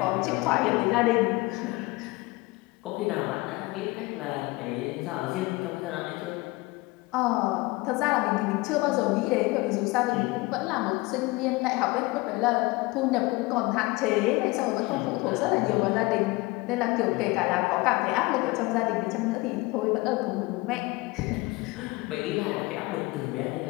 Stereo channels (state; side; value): quieter; right; 22.7 dB